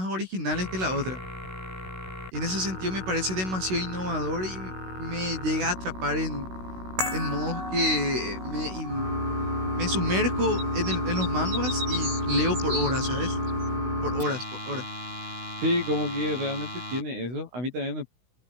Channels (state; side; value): late; left; 16 ms